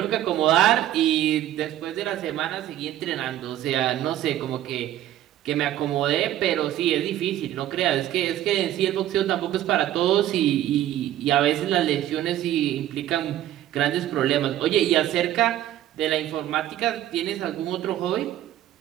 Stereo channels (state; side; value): quieter; left; 12.7 dB